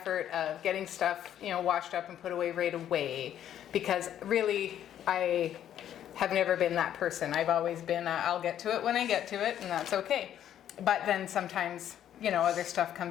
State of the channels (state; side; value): quieter; right; 10.6 dB